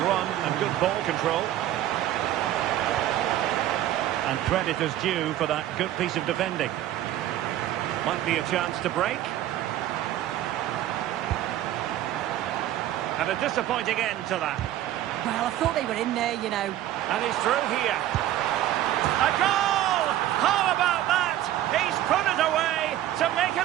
run and good ball control. And credit is due for that good piece of defending. Might be a chance to break. And a disappointing end to that. Well, I thought they were in there, you know. And he's through here. A goal! How about that? He's put it away to make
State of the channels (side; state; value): left; quieter; 13.0 dB